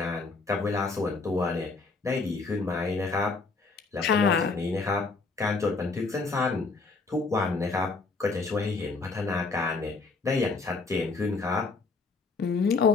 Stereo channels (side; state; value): right; quieter; 4.0 dB